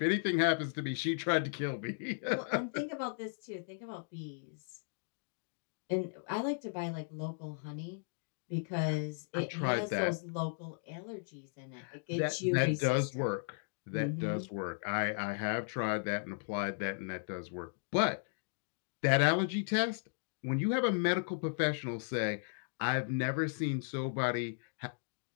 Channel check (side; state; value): right; silent; digital silence